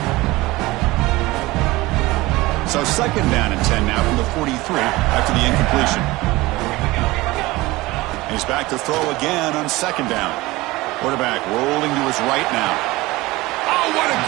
So second down and 10 now from the 43 after the incompletion. He's back to throw again on second down. Quarterback rolling to his right now. Oh, what a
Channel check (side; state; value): left; quieter; 20.2 dB